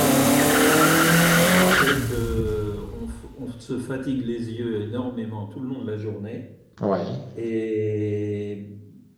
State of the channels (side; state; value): both; identical; correlation 1.00